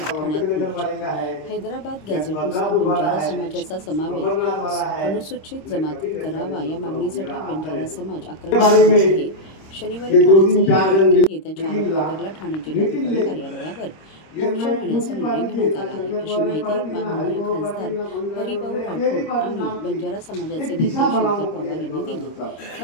ठाण्यात मोर्चा. हैदराबाद गॅझेटनुसार बंजारा समाजाचा समावेश अनुसूचित जमातीत करावा या मागणीसाठी बंजारा समाज आक्रमक झाला आहे. शनिवारी ठाण्यात झालेल्या बैठकीत येत्या 4 ऑक्टोबरला ठाणे जिल्हाधिकारी कार्यालयावर मोर्चा नेण्याचा निर्णय घेण्यात आला आहे, अशी माहिती माननीय खासदार हरिभाऊ राठोड आणि बंजारा समाजाचे नेते शंकर पवार यांनी दिली.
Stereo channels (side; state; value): right; late; 26 ms